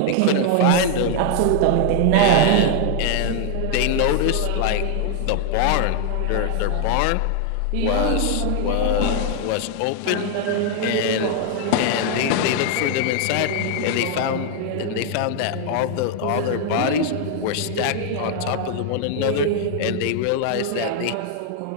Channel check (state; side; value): different; both; correlation 0.00